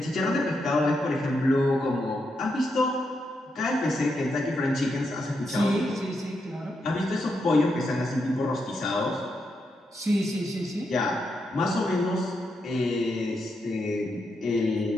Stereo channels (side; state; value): both; normal; correlation 0.83